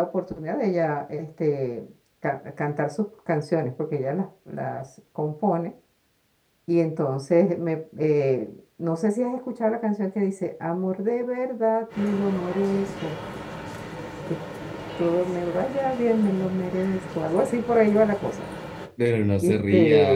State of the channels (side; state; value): both; identical; correlation 1.00